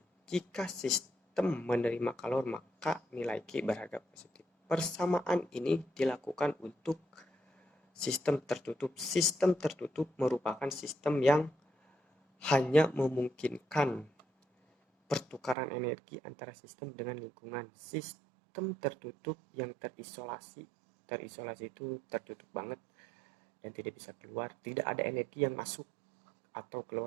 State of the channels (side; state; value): left; drops out; at 15.6 s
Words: Jika sistem menerima kalor, maka nilai Q berharga positif. Persamaan ini dilakukan untuk sistem tertutup. Sistem tertutup merupakan sistem yang hanya memungkinkan pertukaran energi antara sistem dengan lingkungan. Sistem tertutup yang terisolasi itu tertutup banget dan tidak bisa keluar. Tidak ada energi yang masuk atau keluar